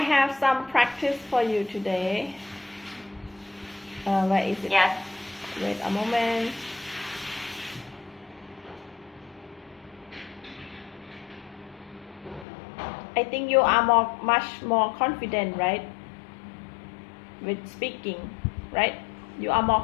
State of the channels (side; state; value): right; drops out; at 12.5 s